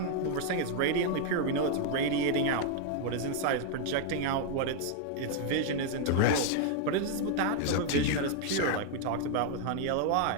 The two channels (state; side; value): different; both; correlation 0.00